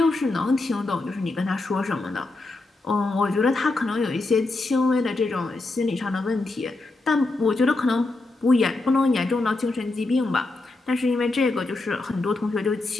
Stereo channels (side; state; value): right; quieter; 3.1 dB